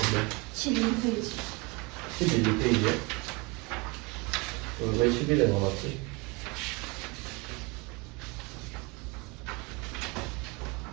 11페이지. 11페이지에? 왜 11에 넣어놨지?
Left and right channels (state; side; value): quieter; left; 27.6 dB